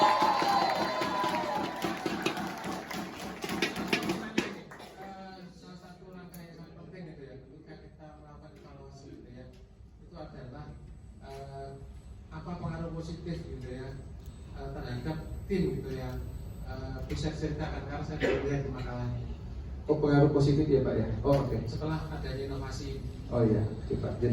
Salah satu langkah yang sangat penting gitu ya, ketika kita melakukan evaluasi gitu ya, itu adalah apa pengaruh positif gitu ya terhadap tim gitu ya. Bisa ceritakan karena saya baru lihat di makalah Oh pengaruh positif ya Pak ya. Oh oke. setelah adanya inovasi. Oh iya, oke Pak.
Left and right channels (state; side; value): identical; both; correlation 1.00